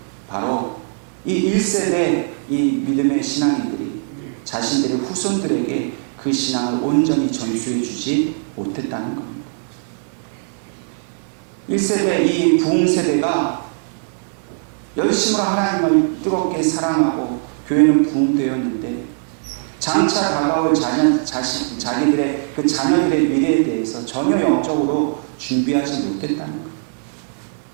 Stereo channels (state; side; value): silent; left; 66 dB below the other